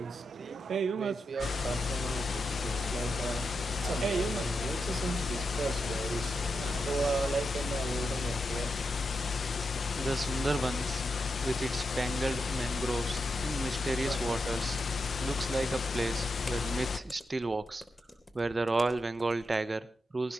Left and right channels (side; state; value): both; normal; correlation 0.86